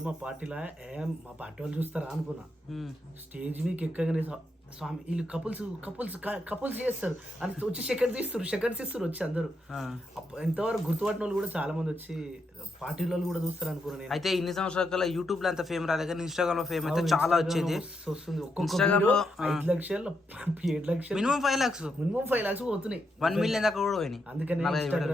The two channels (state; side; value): normal; both; correlation 0.82